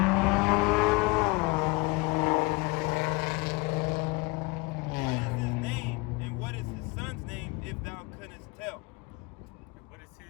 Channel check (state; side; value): quieter; right; 25.8 dB